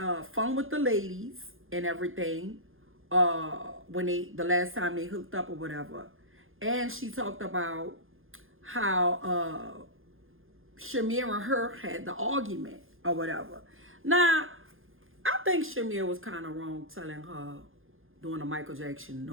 fun with the ladies and everything when the last time they hooked up or whatever. And she talked about how Shamir and her had the argument or whatever. Now, I think Shamir was kind of wrong telling her doing a Michael Jackson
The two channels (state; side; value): late; left; 0.59 ms